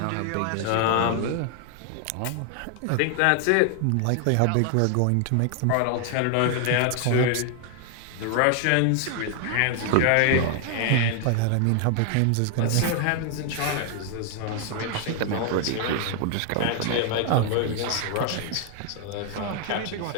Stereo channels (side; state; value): both; different; correlation 0.00